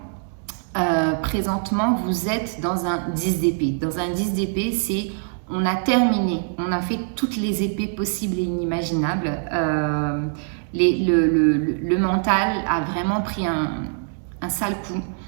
présentement vous êtes dans un 10 d'épée. Dans un 10 d'épée c'est on a terminé, on a fait toutes les épées possibles et inimaginables. Le mental a vraiment pris un sale coup.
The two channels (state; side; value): silent; left; 63 dB below the other